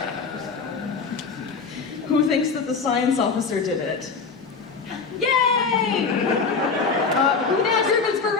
Who thinks that the science officer did it? Yay! Gas ribbons for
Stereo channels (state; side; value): quieter; right; 4.9 dB